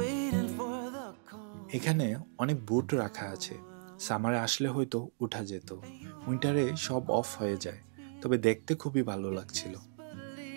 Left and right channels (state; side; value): silent; left; digital silence